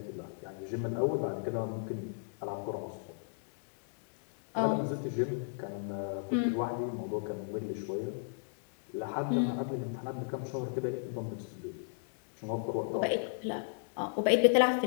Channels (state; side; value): silent; right; digital silence